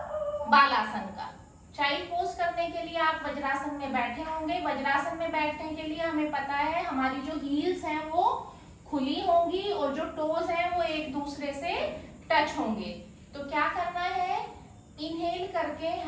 बालासन का। चाइल्ड पोज करने के लिए आप वज्रासन में बैठे होंगे। वज्रासन में बैठने के लिए हमें पता है हमारी जो हील्स हैं वो खुली होंगी और जो टोज हैं वो एक दूसरे से टच होंगे। तो क्या करना है, इनहेल करके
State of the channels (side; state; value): both; identical; correlation 1.00